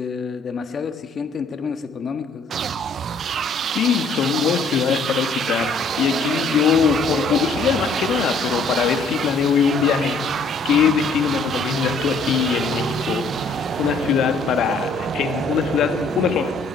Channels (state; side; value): quieter; right; 3.3 dB